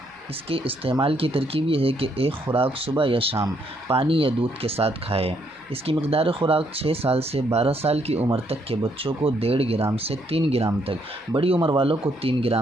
اس کے استعمال کی ترکیب یہ ہے کہ ایک خوراک صبح یا شام پانی یا دودھ کے ساتھ کھائے۔ اس کی مقدار خوراک 6 سال سے 12 سال کی عمر تک کے بچوں کو 1.5 گرام سے 3 گرام تک، بڑی عمر والوں کو 3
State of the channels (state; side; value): normal; both; correlation 0.72